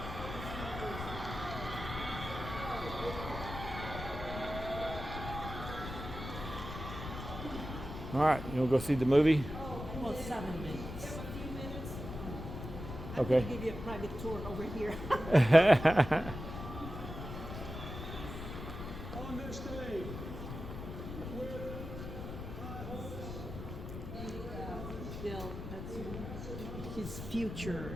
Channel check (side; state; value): left; noise; rumble, 8 dB below the sound